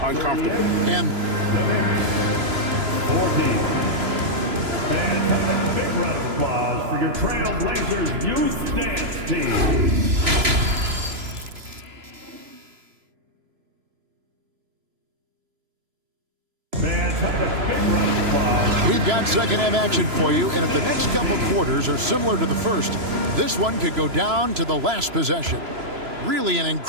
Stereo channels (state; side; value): late; left; 3.0 ms